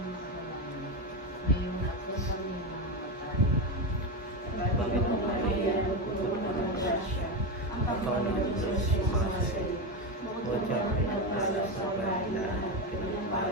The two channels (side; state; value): both; normal; correlation 0.14